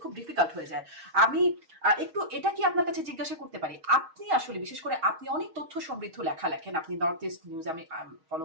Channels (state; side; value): late; left; 6.3 ms